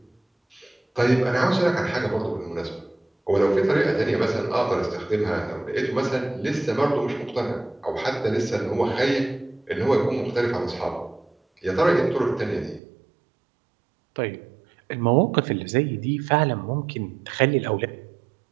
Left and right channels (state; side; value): drops out; left; at 12.8 s